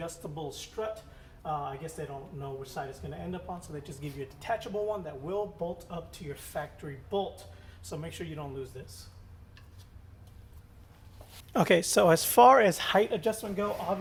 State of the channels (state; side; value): identical; both; correlation 1.00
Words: strut, I guess they don't know which side it's going to end up on, so they just give you a detachable one that will bolt up to your factory bolt. So make sure you don't lose this. Okay, so as far as height adjustment go,